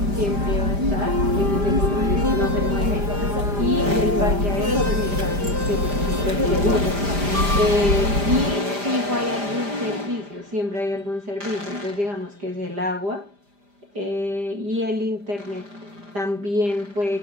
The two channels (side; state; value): left; late; 5.0 ms